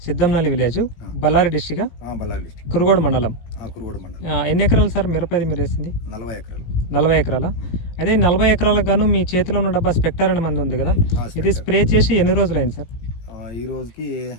Siddhamnalli village, Ballari district, Ballari district, Kurugodu మండలం. కురుగోడు మండలం. ఎన్ని ఎకరాలు సార్ మిరపది మీరు వేసింది? 40 ఎకరాలు. 40 ఎకరాల. అయితే ఈ 40 ఎకరాలకు గాను మీ చేతిలో ఉన్న డబ్బా స్పెక్టర్ అనే మంది ఉంది కదా, ఇది స్ప్రే చేసి ఎన్ని రోజులు అయింది సార్? ఈ రోజుకి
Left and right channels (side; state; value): right; late; 17 ms